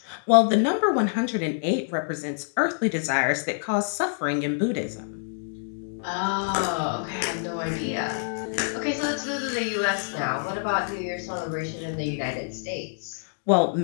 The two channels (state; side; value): silent; right; digital silence